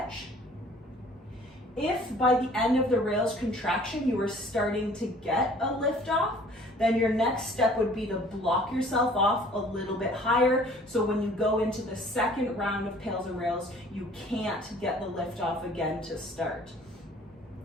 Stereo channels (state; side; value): normal; both; correlation 0.53